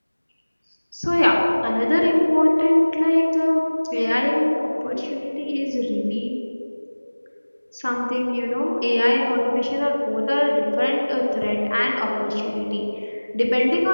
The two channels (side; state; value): both; inverted; correlation -1.00